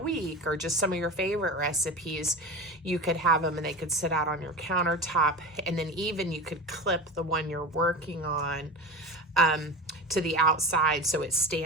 week, or just some of your favorite recipes, you could have them and they could sit out on your countertop, and then even you could clip the one you're working on to the outside so it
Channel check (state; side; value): normal; both; correlation 0.28